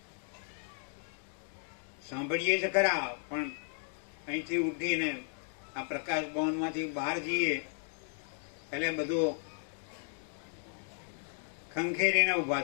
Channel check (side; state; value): right; silent; 55 dB below the other